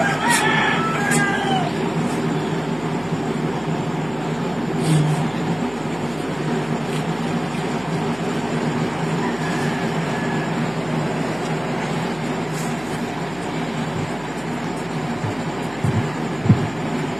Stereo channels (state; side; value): noise; right; hum, 19 dB below the sound